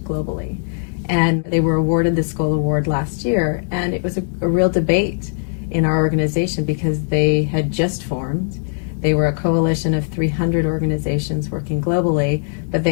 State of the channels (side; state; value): right; silent; digital silence